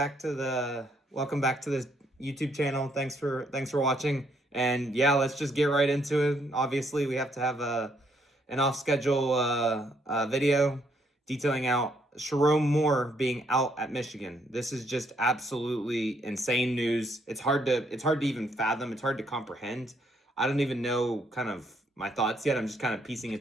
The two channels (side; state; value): both; normal; correlation 0.71